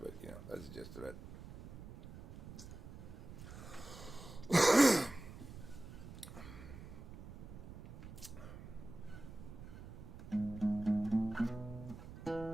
that's the gist of it.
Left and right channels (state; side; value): noise; right; rumble, 13 dB below the sound